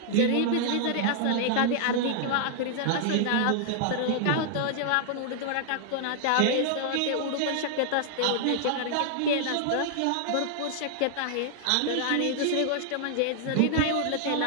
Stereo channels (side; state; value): both; different; correlation -0.01